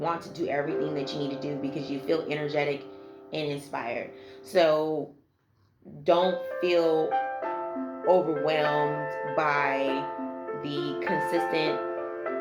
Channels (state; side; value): identical; both; correlation 1.00